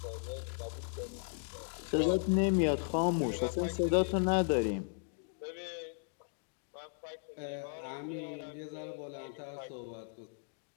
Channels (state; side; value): silent; right; digital silence